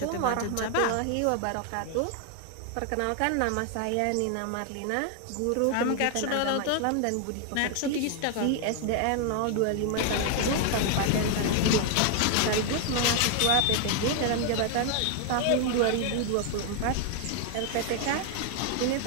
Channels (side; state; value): both; different; correlation 0.00